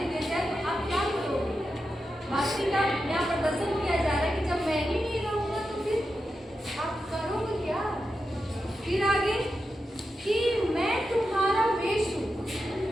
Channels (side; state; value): both; normal; correlation 0.89